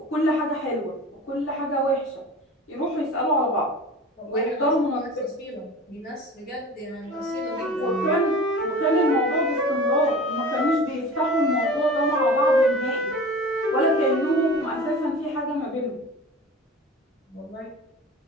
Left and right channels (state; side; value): normal; both; correlation 0.37